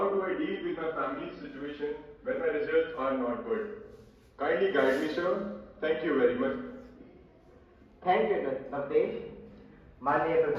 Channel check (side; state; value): both; identical; correlation 1.00